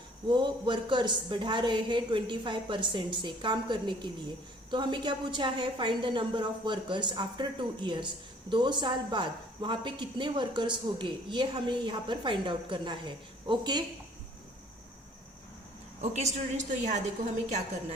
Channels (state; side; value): normal; both; correlation 0.56